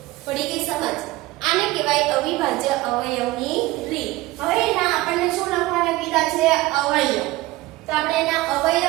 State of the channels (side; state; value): left; quieter; 18.9 dB